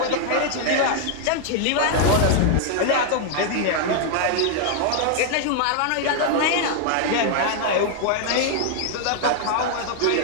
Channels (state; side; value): different; both; correlation 0.00